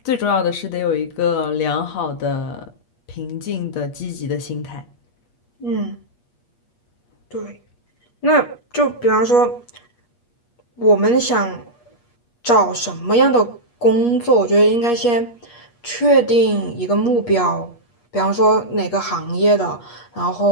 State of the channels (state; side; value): late; right; 8.4 ms